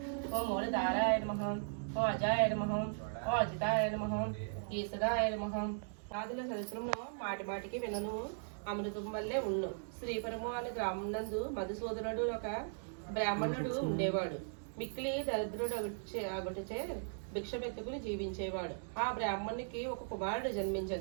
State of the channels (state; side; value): silent; left; digital silence